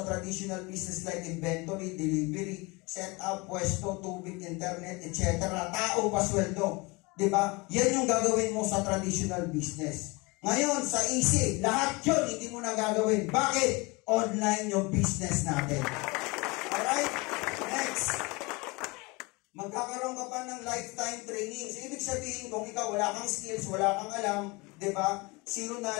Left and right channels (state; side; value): quieter; right; 25.8 dB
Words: traditional business like inventory, delivery, setup, pwesto, tubig, internet, etc. Tao, pasweldo. Diba? Yan yung gagawin mo sa traditional business. Ngayon, sa easy, lahat yun hindi mo na gagawin. Bakit? Online yung business natin. Alright? Next. Magkakaroon ka pa ng lifetime training. So, ibig sabihin, kung ikaw wala kang skills, wala kang alam, di ba? Zero